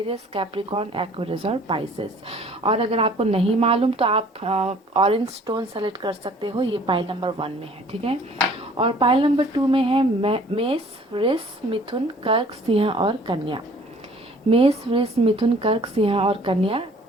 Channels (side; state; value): both; normal; correlation 0.53